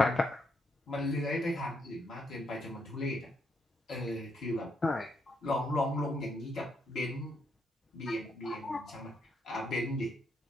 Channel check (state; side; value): normal; both; correlation 0.77